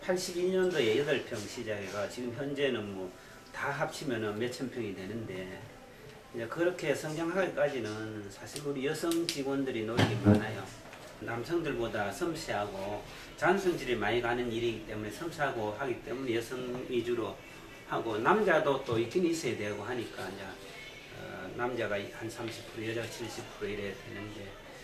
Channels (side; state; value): both; identical; correlation 1.00